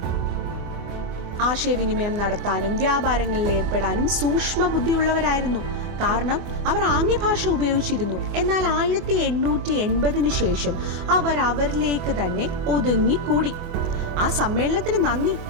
ആശയവിനിമയം നടത്താനും വ്യാപാരങ്ങളിൽ ഏർപ്പെടാനും സൂക്ഷ്മ ബുദ്ധിയുള്ളവരായിരുന്നു. കാരണം അവർ ആംഗ്യഭാഷ ഉപയോഗിച്ചിരുന്നു. എന്നാൽ 1880 ശേഷം അവർ അവരിലേക്ക് തന്നെ ഒതുങ്ങിക്കൂടി. ആ സമ്മേളനത്തിന് നന്ദി.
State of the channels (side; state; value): left; late; 24 ms